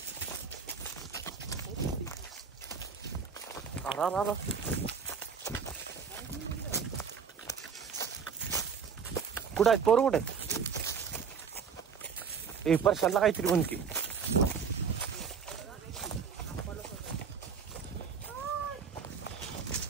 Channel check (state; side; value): quieter; left; 6.3 dB